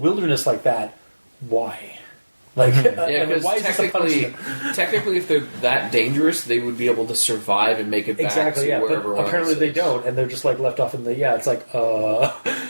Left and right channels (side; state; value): both; inverted; correlation -1.00